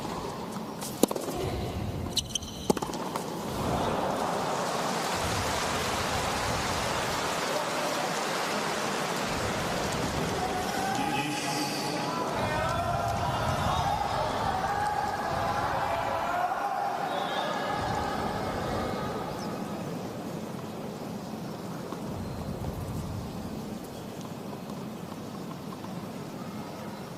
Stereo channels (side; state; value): both; identical; correlation 1.00